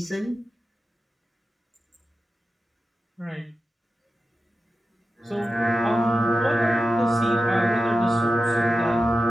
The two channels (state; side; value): normal; both; correlation 0.93